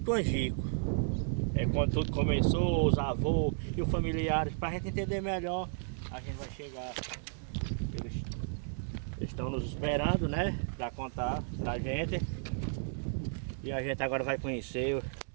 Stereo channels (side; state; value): left; silent; digital silence